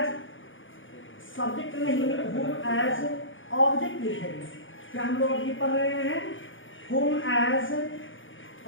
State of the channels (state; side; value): late; right; 0.57 ms